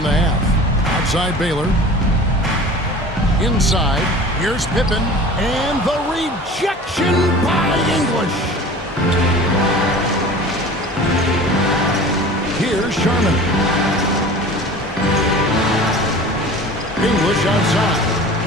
the half. Outside Baylor. Inside, here's Pippen, and the rejection by English. Here's Sharman. English outside.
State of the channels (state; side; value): normal; both; correlation 0.40